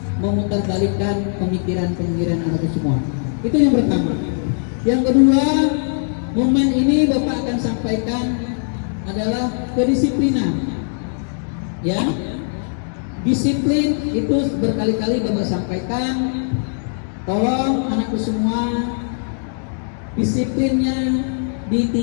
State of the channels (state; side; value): silent; right; 66 dB below the other